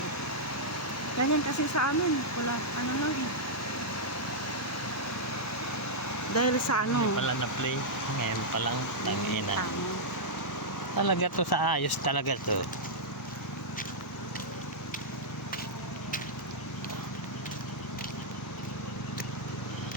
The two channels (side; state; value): both; normal; correlation -0.07